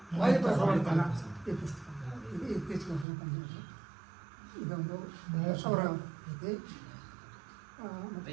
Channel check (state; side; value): drops out; left; at 3.1 s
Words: ವಾಯುಪ್ರಸವರ್ತನ ಈ ಪುಸ್ತಕ ಇದು ಇತ್ತೀಚೆಗೆ ಬಂದಿದೆ. ಇದೊಂದು ಅವರ ಕೃತಿ. ಮತ್ತು